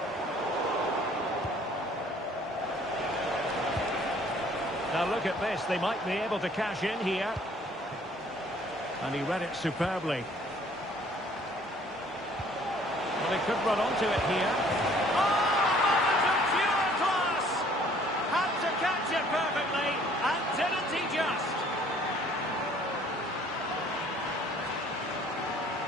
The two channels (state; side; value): normal; both; correlation 0.57